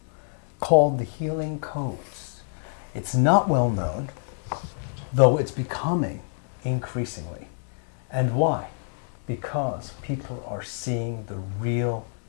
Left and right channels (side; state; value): right; silent; 57 dB below the other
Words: called the Healing Codes. It's not well known, though it's becoming increasingly. And why? Because people are seeing the real